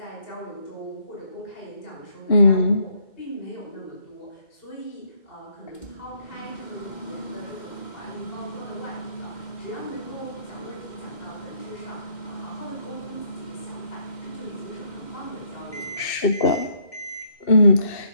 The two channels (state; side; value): late; right; 2.6 ms